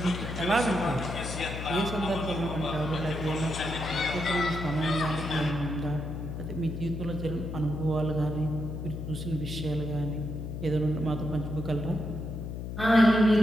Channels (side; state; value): left; noise; hum, 6 dB below the sound